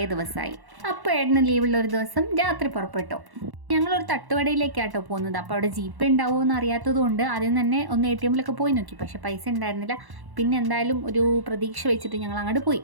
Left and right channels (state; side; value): late; left; 1.1 ms